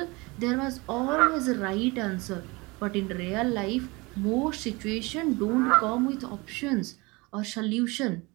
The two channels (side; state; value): left; quieter; 24.8 dB